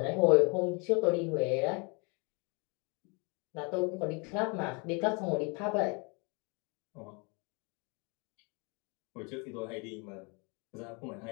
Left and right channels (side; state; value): right; quieter; 32.1 dB